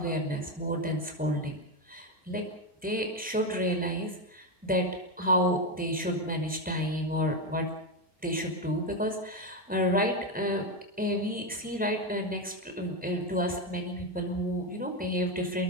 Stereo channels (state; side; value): normal; both; correlation 0.10